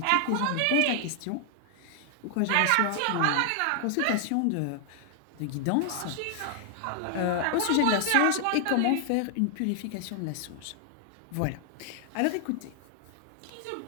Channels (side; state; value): both; different; correlation 0.00